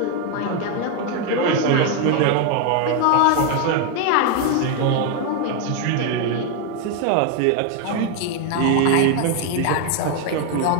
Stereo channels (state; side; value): different; both; correlation 0.01